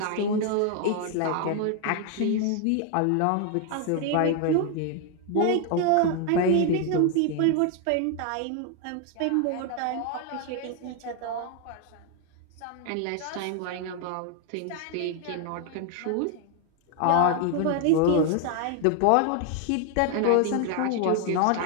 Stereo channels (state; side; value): different; both; correlation 0.01